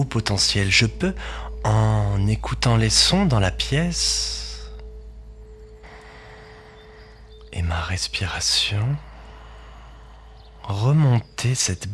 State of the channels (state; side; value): identical; both; correlation 1.00